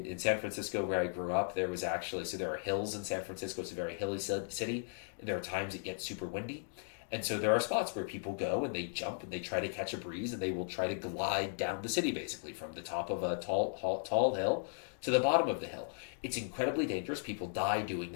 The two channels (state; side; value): silent; right; digital silence